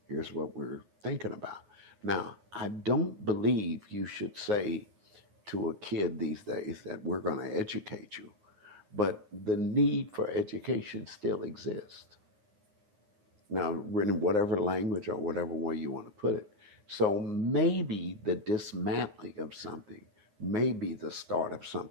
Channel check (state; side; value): late; left; 9.6 ms